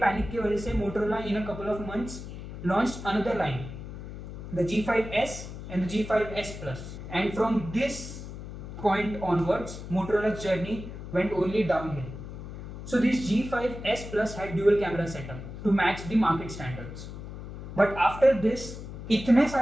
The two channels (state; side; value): noise; left; hum, 10 dB below the sound